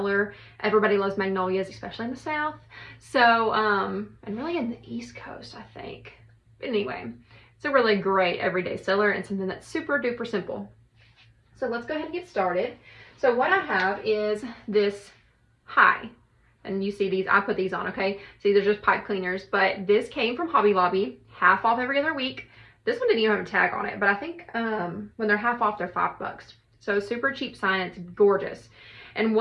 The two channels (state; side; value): identical; both; correlation 1.00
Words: Everybody loves magnolias, especially in the South. So, and really in the East Coast, I think. But anyway, it's a really great everyday seller and something that's super duper simple. So let's go ahead and get started. So what I have is this high. And you see these, I put these on, okay? See, they're just pipe cleaners, but this came from Hobby Lobby, half off every other week. This one didn't even have a tag on it, but I think when they're half off, they're $5. So super cheap sign, it's gorgeous. And